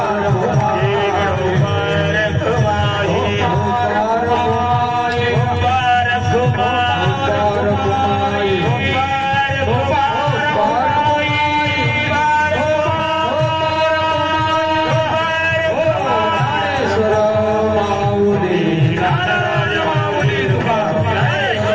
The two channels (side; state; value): both; identical; correlation 1.00